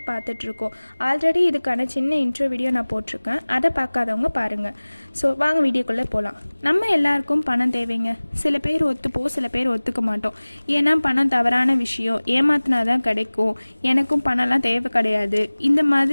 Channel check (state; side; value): inverted; both; correlation -1.00